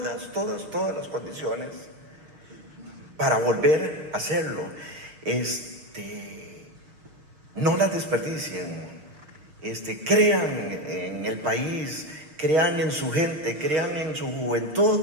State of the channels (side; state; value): left; late; 6.4 ms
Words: las condiciones para volver a hacerlo. No las desperdicien. Crean en el país, crean en su gente, crean en su